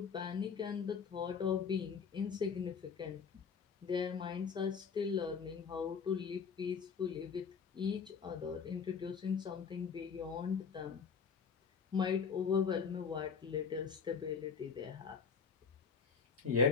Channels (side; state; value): right; quieter; 6.0 dB